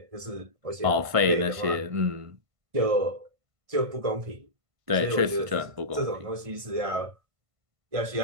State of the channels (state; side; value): late; left; 1.5 ms